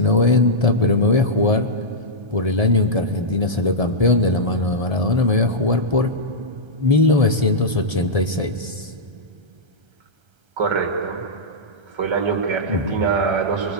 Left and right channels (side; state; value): left; late; 1.3 ms